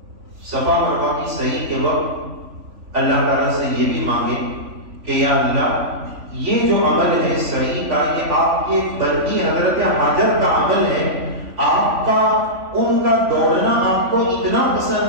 صفا مروہ کی صحیح کے وقت اللہ تعالیٰ سے یہ بھی مانگے کہ یا اللہ یہ جو عمل ہے صحیح کا، یہ آپ کے بندی حضرت حاجر کا عمل ہے، آپ کا ان کا دوڑنا آپ کو اتنا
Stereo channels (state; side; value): late; left; 3.5 ms